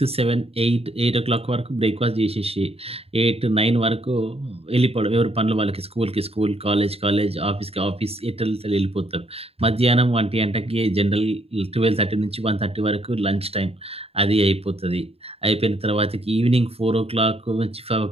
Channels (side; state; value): left; late; 0.29 ms